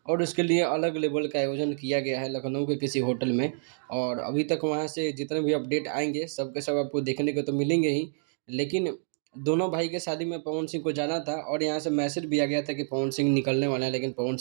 और उसके लिए अलग लेवल का आयोजन किया गया है लखनऊ के किसी होटल में। और अभी तक वहाँ से जितने भी अपडेट आएंगे सब के सब आपको देखने को तो मिलेंगे ही, लेकिन दोनों भाई के शादी में पवन सिंह को जाना था और यहाँ से मैसेज भी आ गया था कि पवन सिंह निकलने वाला है, लेकिन पवन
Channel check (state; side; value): silent; left; digital silence